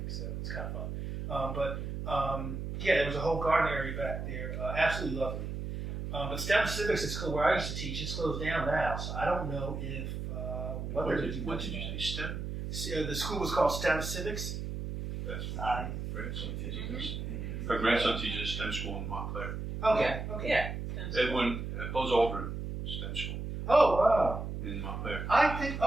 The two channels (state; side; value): noise; right; hum, 5 dB below the sound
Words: so it's kind of fun. yeah, there was a whole garden area back there. Absolutely lovely. But STEM Civics is where I used to teach. It's closed down now, so I don't know if what they're going to do. What did you say? STEM? The school was called STEM Civics. That's what my grandson teaches. Her grandson teaches STEM school in Montclair. Okay. Okay. Yeah. Edwin Buzz Aldrin STEM school Oh wow. in Montclair. I think.